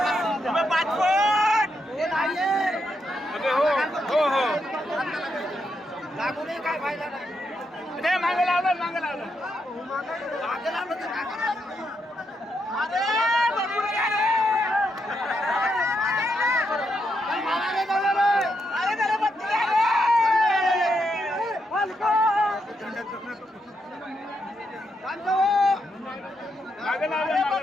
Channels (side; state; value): both; normal; correlation 0.81